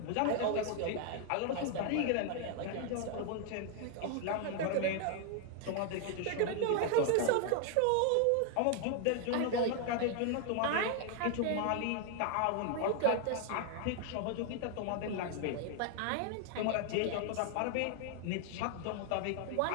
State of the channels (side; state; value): both; different; correlation 0.00